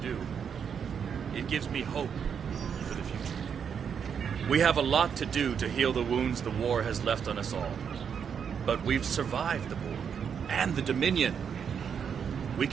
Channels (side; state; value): left; quieter; 7.3 dB